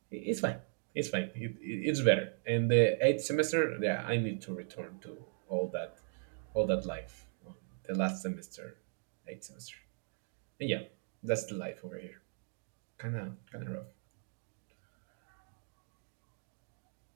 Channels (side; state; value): left; silent; digital silence